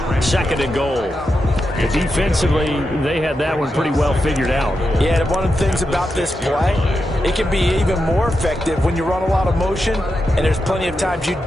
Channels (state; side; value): normal; both; correlation 0.87